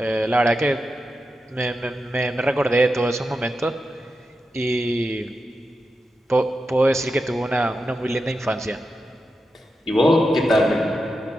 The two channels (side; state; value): both; normal; correlation 0.89